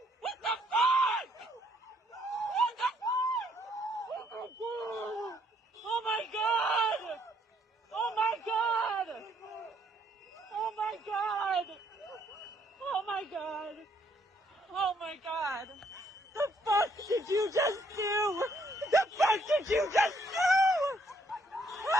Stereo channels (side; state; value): both; normal; correlation 0.69